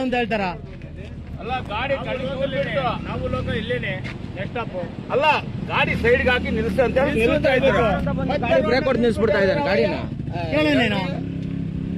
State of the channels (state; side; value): identical; both; correlation 1.00